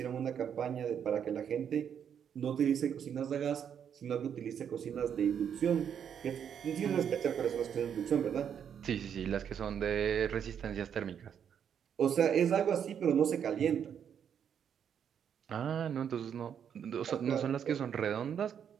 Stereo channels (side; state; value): left; quieter; 8.3 dB